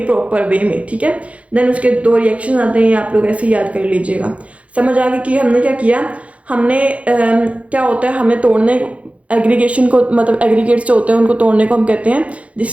प्रॉपर वे में, ठीक है। देन उसके 2 रिएक्शन आते हैं, आप लोग ऐसे याद कर लीजिएगा। समझ आ गई कि हमने क्या किया, हमने क्या होता है, हमें तोड़ने एग्रीगेशन को, मतलब एग्रीगेट्स जो होते हैं उनको तोड़ने को हम कहते हैं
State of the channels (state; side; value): late; left; 0.064 ms